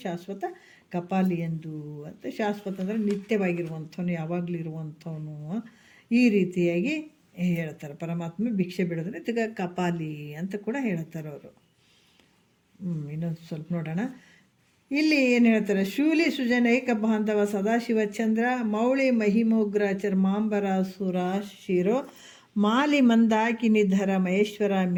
ಶಾಶ್ವತ ಕಪಾಲಿ ಎಂದು ಅಂತ. ಶಾಶ್ವತ ಅಂದರೆ ನಿತ್ಯವಾಗಿರುವಂಥವನು, ಯಾವಾಗಲೂ ಇರುವಂಥವನು. ಈ ರೀತಿಯಾಗಿ ಹೇಳ್ತಾರೆ. ಪರಮಾತ್ಮ ಭಿಕ್ಷೆ ಬಿಡೋದ್ರೆ ಇದಕ್ಕೆ ಕಪಾಲಿ ಅಂತ ಕೂಡ ಹೇಳ್ತಾರೆ ಅವರು. ಇನ್ನೊಂದು ಸ್ವಲ್ಪ ನೋಡೋಣ. ಇಲ್ಲಿ ಏನು ಹೇಳ್ತಾರೆ? ಶೂಲಿ ಸುಜನೈಕ ಬಾಂಧವ ಸದಾಶಿವ ಚಂದ್ರ ಮೌಳಿ ಮಹಿಮೋಗ್ರ ಚರ್ಮಾಂಬರ ಸುರ ಶಿರೋ ಮಾಲಿ ಮಂದಾಕಿನಿಧರ ಮಹೇಶ್ವರ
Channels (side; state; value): both; identical; correlation 1.00